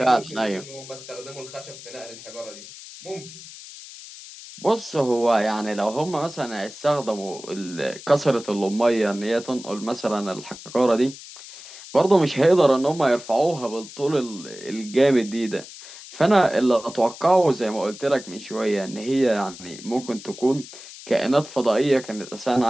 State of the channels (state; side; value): noise; left; hiss, 15 dB below the sound